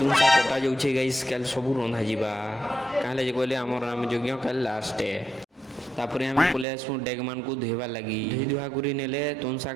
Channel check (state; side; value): drops out; left; at 6.7 s